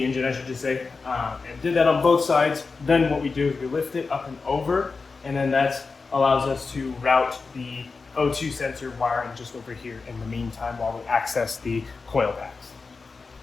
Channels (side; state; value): right; quieter; 4.4 dB